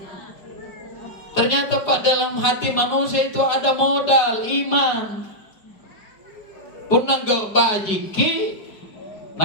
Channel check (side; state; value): right; late; 4.9 ms